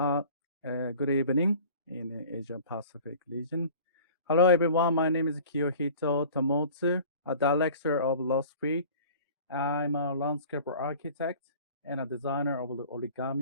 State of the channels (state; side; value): inverted; both; correlation -0.45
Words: evening in the Asia Pacific region. Hello, everyone. My name is Kiyohito Tomotsu, a director of Lost Free. I'm a landscape architect and a designer of the